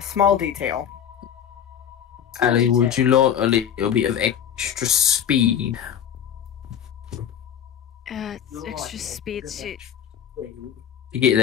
detail. Allie, would you like a little bit of extra speed? Extra speed to get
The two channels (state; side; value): quieter; right; 8.9 dB